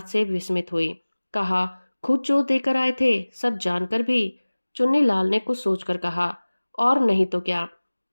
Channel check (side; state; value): both; inverted; correlation -1.00